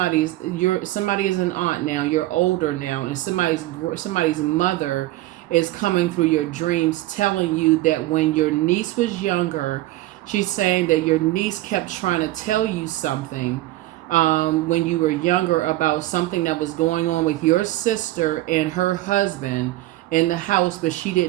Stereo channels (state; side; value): quieter; left; 17.1 dB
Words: is an aunt now, you're older now, and somebody's mother is coming through your dreams telling you that when your niece was younger, she's saying that your niece kept trying to tell you something when you were younger about something that was going on with your sister and her husband in the house, but she